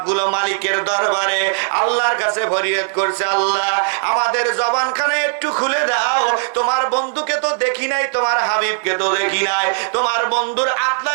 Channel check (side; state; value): left; silent; digital silence